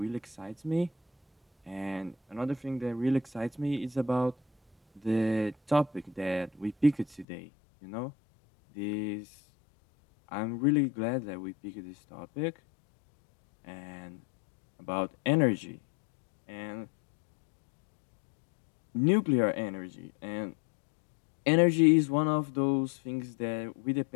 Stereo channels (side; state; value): right; drops out; at 7.2 s